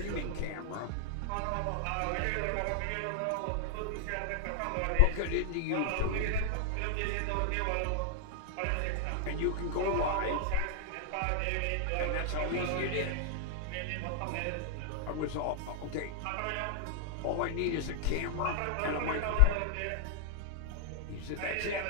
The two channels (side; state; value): both; different; correlation -0.01